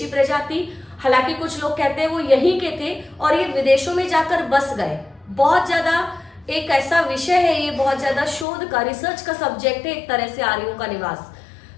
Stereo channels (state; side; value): drops out; right; at 8.5 s